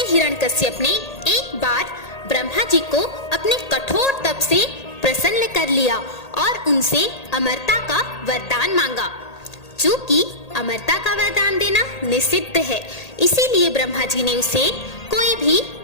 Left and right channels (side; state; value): right; late; 1.8 ms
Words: हिरण्यकश्यप ने एक बार ब्रह्मा जी को अपने कठोर तप से प्रसन्न कर लिया और उनसे अमरता का वरदान मांगा। चूंकि अमरता का वरदान देना निषिद्ध है, इसीलिए ब्रह्मा जी ने उसे कोई भी